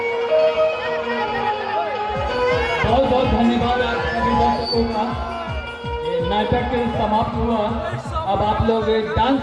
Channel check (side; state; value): both; identical; correlation 1.00